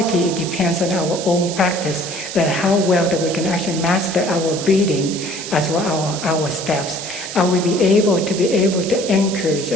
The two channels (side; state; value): right; noise; hiss, 8 dB below the sound